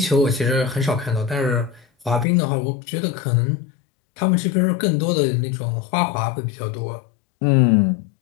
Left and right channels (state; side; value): drops out; right; at 2.2 s